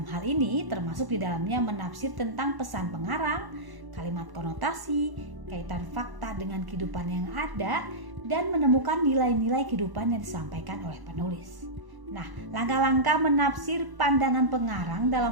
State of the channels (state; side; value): late; left; 1.0 ms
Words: hal ini termasuk di dalamnya menafsir tentang pesan pengarang, kalimat konotasi, kaitan fakta dengan kehidupan yang ada, dan menemukan nilai-nilai kehidupan yang disampaikan oleh penulis. Nah, langkah-langkah menafsir pandangan pengarang